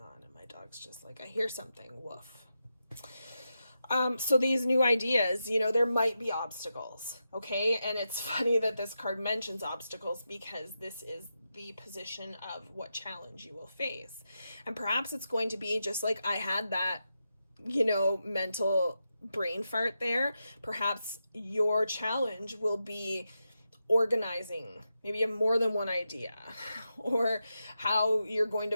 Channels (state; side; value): inverted; both; correlation -0.88